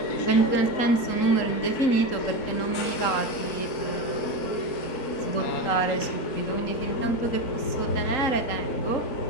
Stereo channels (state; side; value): late; right; 3.8 ms